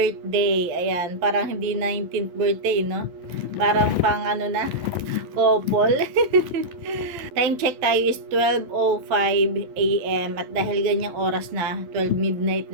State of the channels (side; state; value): left; late; 12 ms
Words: Ayan, parang hindi 19th birthday, no? Parang pang ano na? Couple. Time check tayo is 12:05 AM at dahil ganyang oras na, 12 midnight